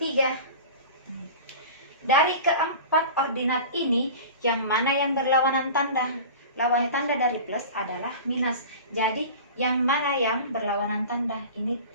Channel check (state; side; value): inverted; both; correlation -0.36